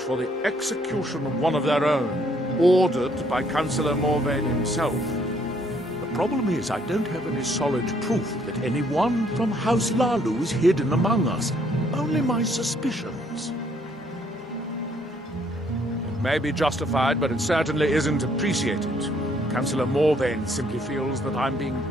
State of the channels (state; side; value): normal; both; correlation 0.67